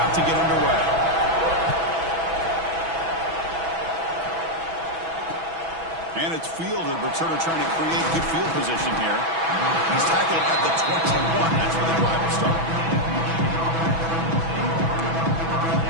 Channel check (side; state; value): left; late; 6.1 ms